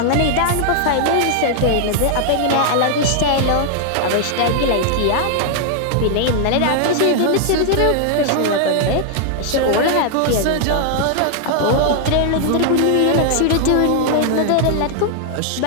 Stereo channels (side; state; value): both; different; correlation 0.00